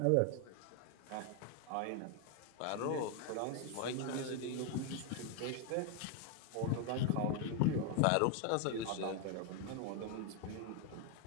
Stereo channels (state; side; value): different; both; correlation 0.01